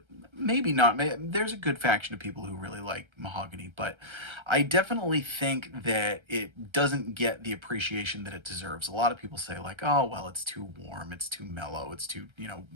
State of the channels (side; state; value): left; late; 1.3 ms